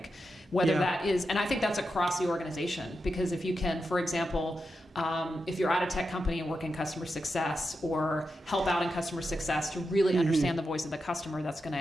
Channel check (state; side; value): normal; both; correlation 0.88